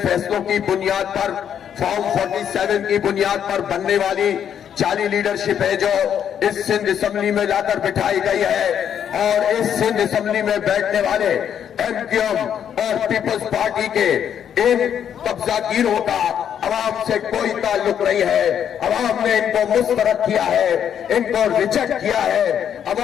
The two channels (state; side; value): quieter; right; 8.9 dB